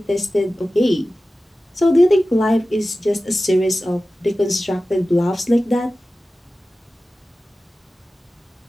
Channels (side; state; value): both; normal; correlation 0.95